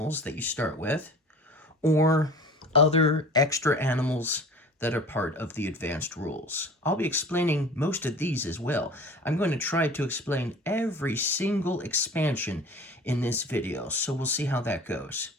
that you start with, or other extra animals that are part of the advanced rules. I'll be explaining most of these as well. I'm going to try to explain every single expansion in this video, so we'll see how that goes,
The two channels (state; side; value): normal; both; correlation 0.41